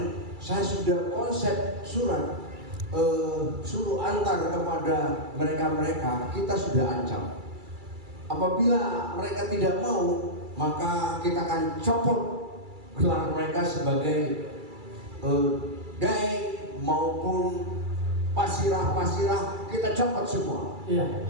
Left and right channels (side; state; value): left; late; 2.3 ms